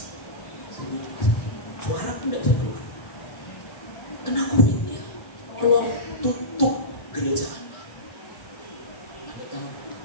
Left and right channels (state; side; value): late; right; 1.7 ms